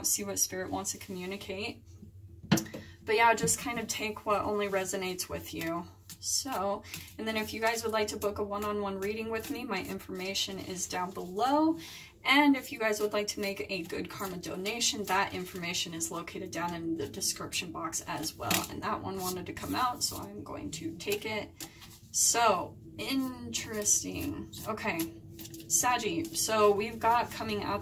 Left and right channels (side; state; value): both; identical; correlation 1.00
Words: see what Spirit wants to communicate. But yeah, just kind of take what only resonates with you. So, and then if you guys would like to book a one-on-one reading with me, my information is down below. And if you guys would like to make a good karma donation, that information is located down in the description box as well. And that one wanted to come out, so I'm going to take it. So, interesting. Okay, Saggy. So we've got coming